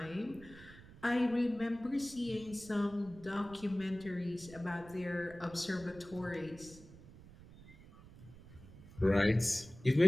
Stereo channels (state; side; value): noise; right; rumble, 19 dB below the sound